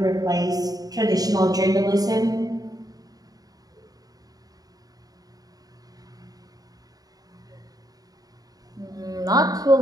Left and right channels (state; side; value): late; left; 0.18 ms